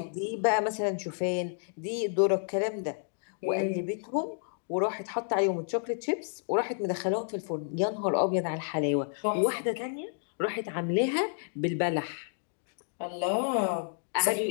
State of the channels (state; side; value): silent; right; digital silence